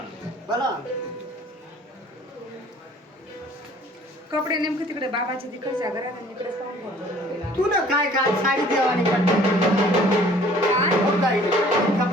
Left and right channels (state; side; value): normal; both; correlation 0.54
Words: बोला कपडे नेमकं तिकडे बाबाच्या तिकडच्या घरात आणि इकडेच पाहून ठेवतो. तू ना काय काय साडी देवानी काय